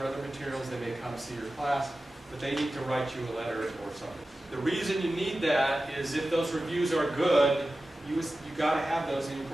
other materials, they may come see your class, but they need to write you a letter or something. The reason you need that is if those reviews are good, you got to have those in your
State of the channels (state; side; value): normal; both; correlation 0.94